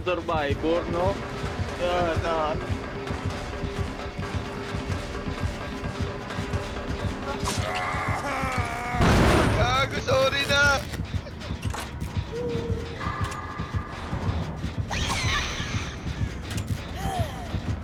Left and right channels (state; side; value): identical; both; correlation 1.00